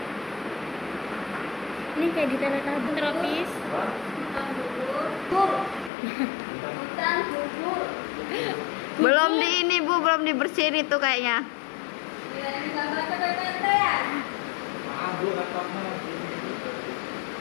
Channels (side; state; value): right; drops out; at 5.9 s